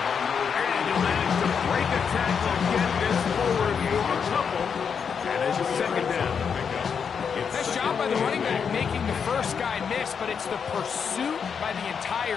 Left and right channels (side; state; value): right; quieter; 6.6 dB